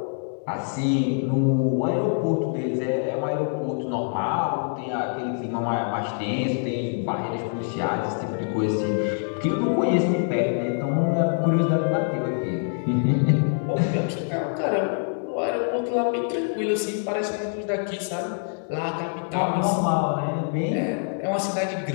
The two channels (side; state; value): right; silent; 62 dB below the other